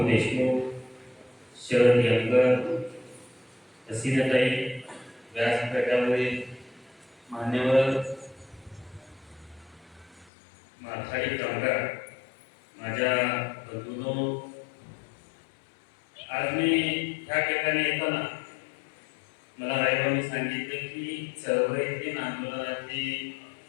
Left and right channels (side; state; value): right; drops out; at 10.3 s